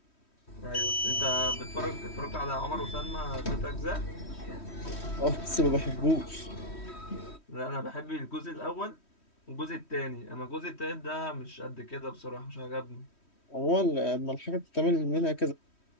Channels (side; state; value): right; late; 3.1 ms